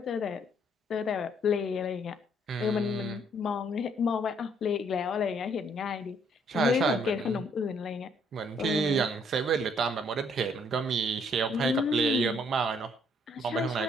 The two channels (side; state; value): both; normal; correlation 0.67